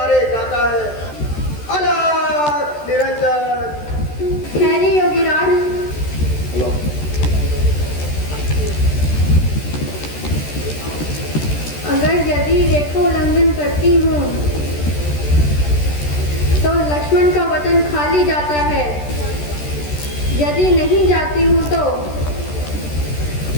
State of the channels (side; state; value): right; late; 13 ms